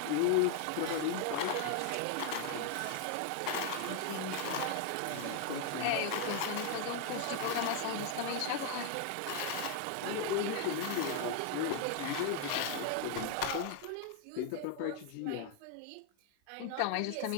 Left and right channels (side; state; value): both; different; correlation 0.00